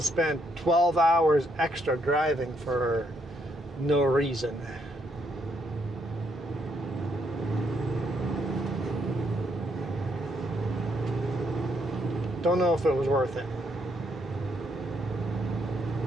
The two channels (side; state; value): both; normal; correlation 0.74